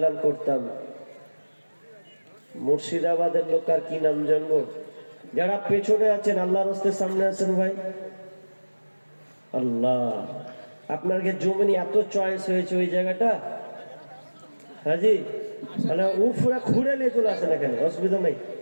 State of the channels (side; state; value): both; inverted; correlation -1.00